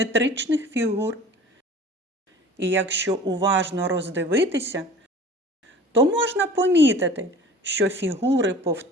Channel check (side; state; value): both; normal; correlation 0.43